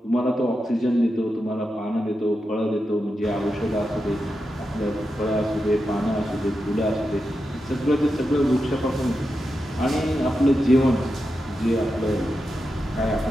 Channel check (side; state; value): both; normal; correlation 0.89